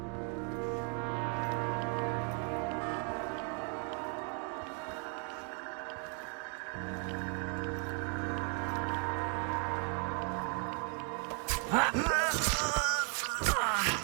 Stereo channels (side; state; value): left; quieter; 38.7 dB